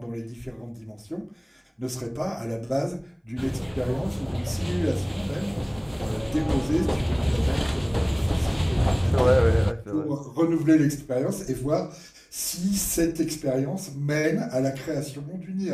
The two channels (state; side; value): identical; both; correlation 1.00